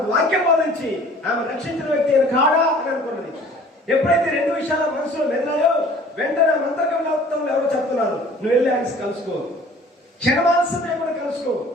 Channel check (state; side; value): normal; both; correlation 0.50